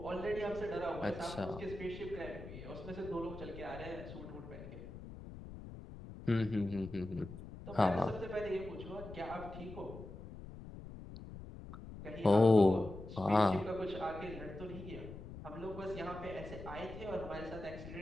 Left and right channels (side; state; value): left; noise; rumble, 12 dB below the sound